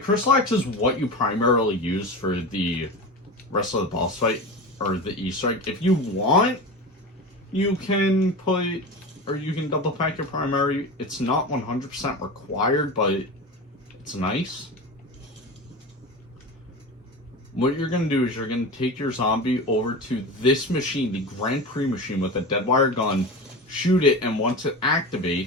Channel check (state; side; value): normal; both; correlation 0.27